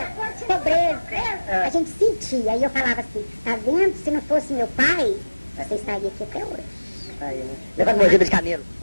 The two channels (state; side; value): inverted; both; correlation -1.00